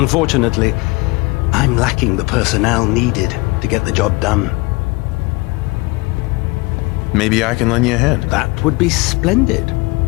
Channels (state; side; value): quieter; right; 24.9 dB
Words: I'm lacking the personnel needed to get the job done. Maybe I can lend you a hand. That would be splendid.